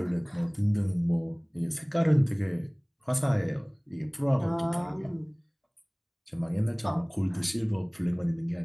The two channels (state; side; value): identical; both; correlation 1.00